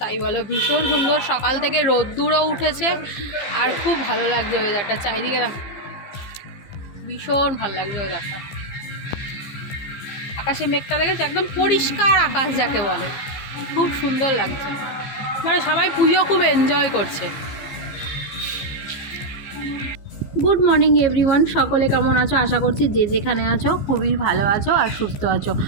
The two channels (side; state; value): right; late; 15 ms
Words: তাই বলো, ভীষণ সুন্দর। সকাল থেকে রোদ্দুরও উঠেছে আর খুব ভালো লাগছে ওয়েদারটা। চারিদিকে ভীষণ ভালো লাগছে ওয়েদারটা। আকাশে মেঘটা দেখেছে, একদম পরিষ্কার আকাশ যাকে বলে, খুব সুন্দর লাগছে। মানে সবাই পুজো খুব এনজয় করছে। গুড মর্নিং এভরিওয়ান, সকলে কেমন আছো? আশা করছি যে যেখানে আছো খুবই ভালো আছো আর সুস্থ আছো।